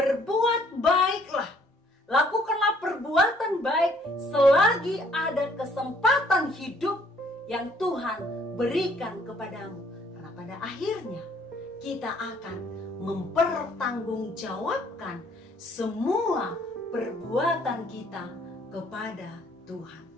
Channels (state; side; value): normal; both; correlation 0.62